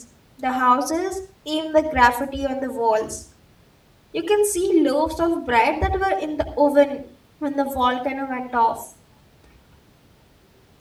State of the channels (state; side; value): identical; both; correlation 1.00